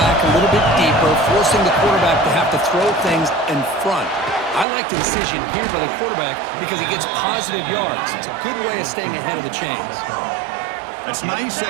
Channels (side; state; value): left; drops out; at 4.7 s